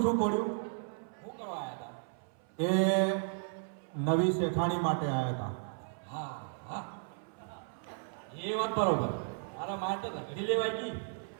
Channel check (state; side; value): silent; left; 55 dB below the other